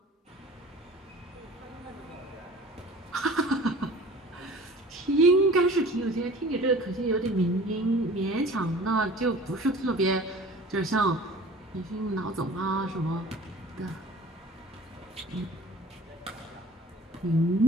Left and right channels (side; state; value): both; normal; correlation 0.44